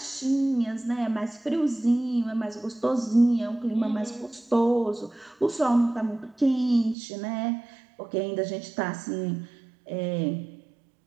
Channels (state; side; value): drops out; left; at 7.0 s